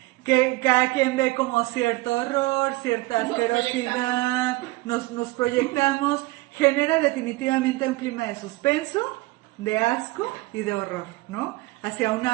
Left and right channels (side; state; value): left; quieter; 21.3 dB